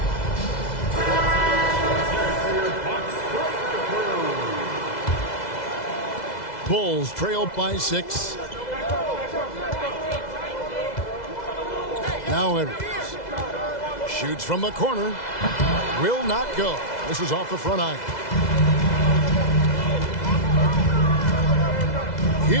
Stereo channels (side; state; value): right; late; 2.0 ms